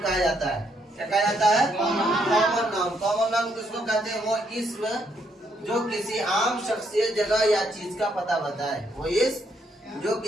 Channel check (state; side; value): normal; both; correlation 0.74